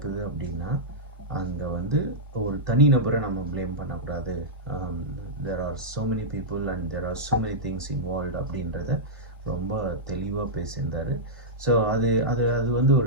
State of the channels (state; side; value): normal; both; correlation -0.10